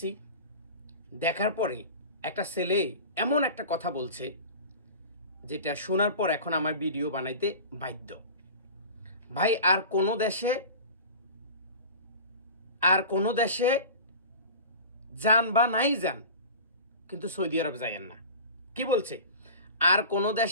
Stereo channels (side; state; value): both; inverted; correlation -0.36